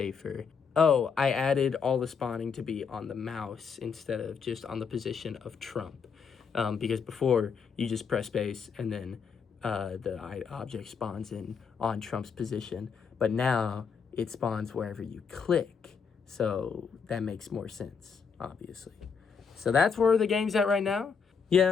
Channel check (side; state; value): right; quieter; 6.1 dB